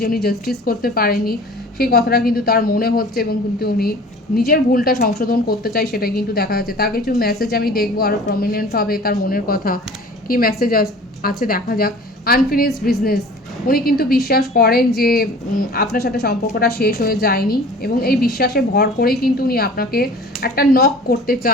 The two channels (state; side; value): normal; both; correlation 0.44